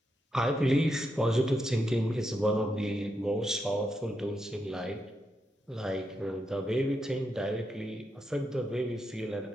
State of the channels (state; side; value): normal; both; correlation 0.83